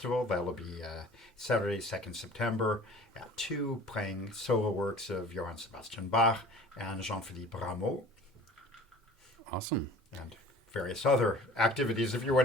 That'll be Saturday, 2nd September at 2, playing solo works of Johann Sebastian Bach and Jean-Philippe Rameau. Awesome. And various other activities if you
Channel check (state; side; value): normal; both; correlation 0.45